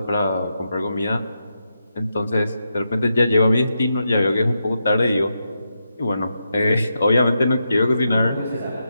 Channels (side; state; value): both; inverted; correlation -0.85